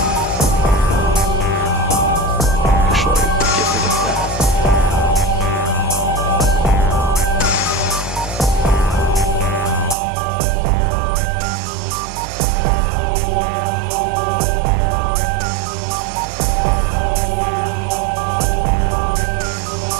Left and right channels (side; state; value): left; drops out; at 10.0 s